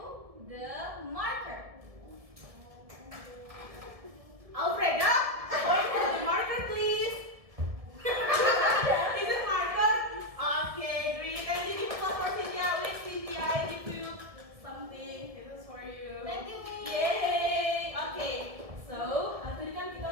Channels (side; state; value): left; late; 1.7 ms